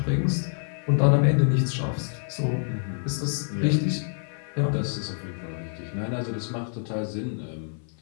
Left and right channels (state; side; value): silent; right; 56 dB below the other